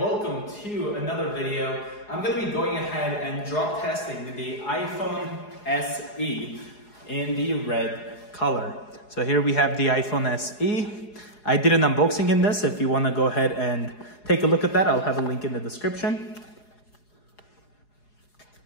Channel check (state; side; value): late; right; 4.8 ms